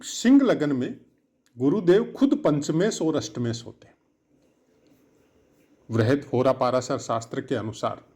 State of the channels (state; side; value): identical; both; correlation 1.00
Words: सिंह लगन में गुरुदेव खुद पंचमेश और अष्टमेश होते हैं। वृहद होरा पाराशर शास्त्र के अनुसार